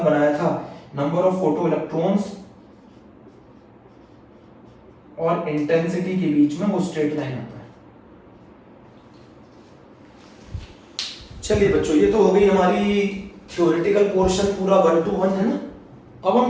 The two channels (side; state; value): both; identical; correlation 1.00